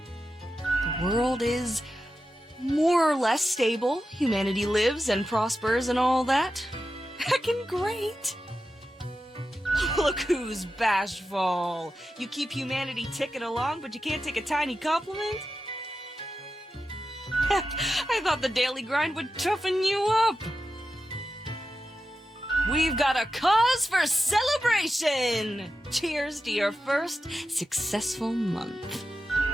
world is more or less stable. Humanity lives and prospers and all that. Heckin' great. Look who's bashful. You keep humanity ticking along, but you can't take a tiny compliment? Heck, I thought the daily grind would toughen you up. We've got a cause for celebration! Cheers to your first successful month.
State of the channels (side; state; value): both; normal; correlation 0.91